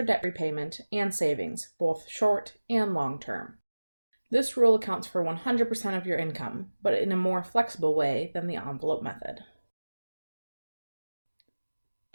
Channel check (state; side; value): inverted; both; correlation -1.00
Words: debt repayment and savings, both short and long term. This rule accounts for 100% of your income, but in a more flexible way than the envelope method.